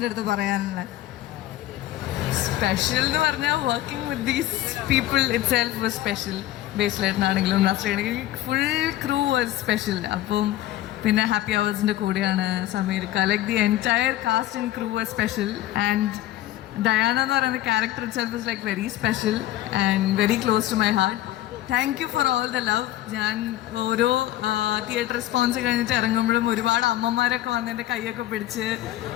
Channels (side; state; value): right; quieter; 14.5 dB